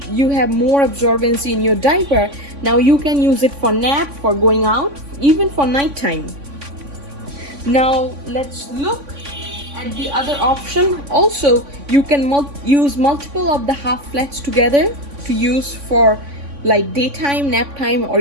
you have more absorbency in your diaper. Now you can use it for nap, for going out, even for nighttime. Now let's look at the other option. Also you can use multiple of the half flats together to use for like daytime, nap time, or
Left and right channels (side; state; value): left; late; 3.5 ms